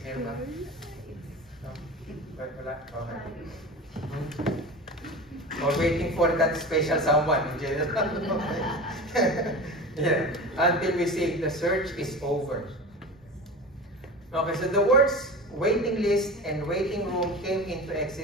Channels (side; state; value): both; normal; correlation 0.31